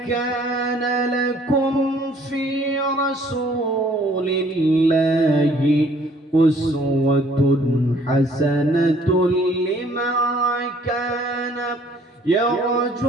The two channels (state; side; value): normal; both; correlation 0.59